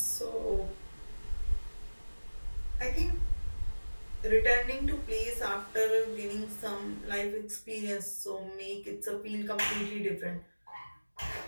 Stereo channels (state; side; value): inverted; both; correlation -1.00